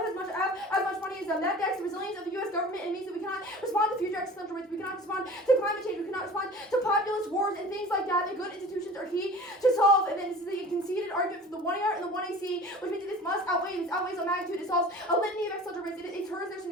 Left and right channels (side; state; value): both; normal; correlation 0.41